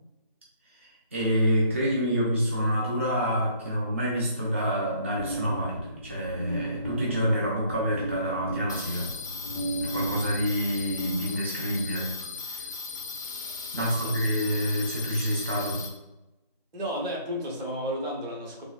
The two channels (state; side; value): inverted; both; correlation -0.61